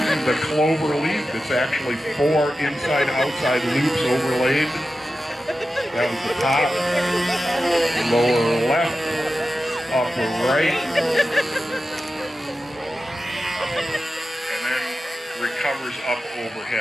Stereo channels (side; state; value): both; normal; correlation 0.93